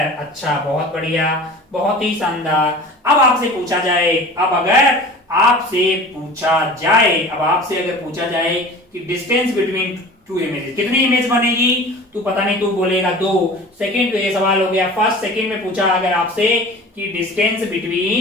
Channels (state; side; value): normal; both; correlation 0.40